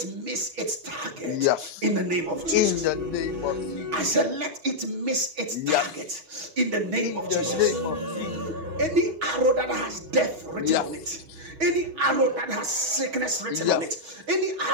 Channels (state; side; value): late; left; 6.2 ms